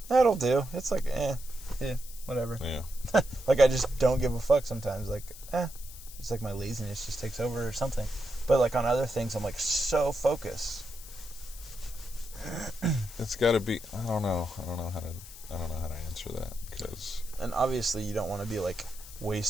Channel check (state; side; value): noise; left; hiss, 16 dB below the sound